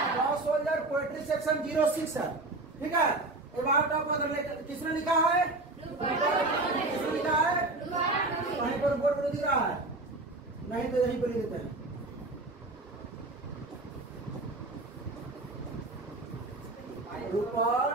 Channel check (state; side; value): quieter; left; 3.0 dB